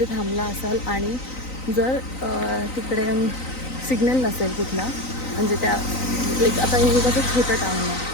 थांबला असाल आणि जर तिकडे सिग्नल नसेल कुठला म्हणजे त्या लाईक आता हे कसं छोटं टाउन आहे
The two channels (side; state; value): right; late; 3.9 ms